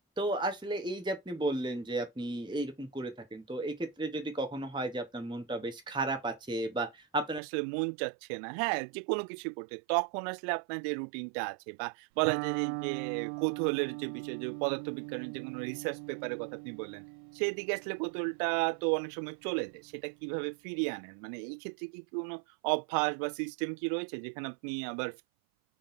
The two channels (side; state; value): left; drops out; at 7.4 s